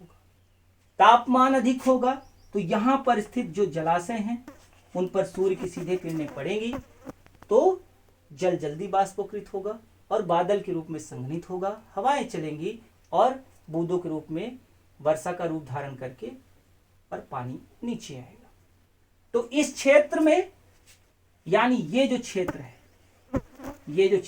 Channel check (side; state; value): both; identical; correlation 1.00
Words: तापमान अधिक होगा तो यहां पर स्थित जो जलाशय हैं उन पर सूर्य की सीधे किरणें पड़ेंगी तो जल जल्दी बाष्पीकृत होगा और बादल के रूप में संघनित होगा, हवाएं चलेंगी और बूंदों के रूप में वर्षा का रूप धारण करके और पानी नीचे आएगा। तो इस क्षेत्र में, यानी ये जो क्षेत्र